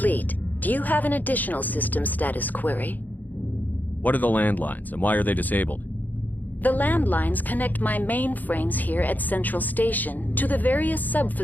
Do you have an additional system status query? What are the landlines, and why are they disabled? The landlines connect my mainframes here at Central Station to the various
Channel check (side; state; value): right; late; 0.084 ms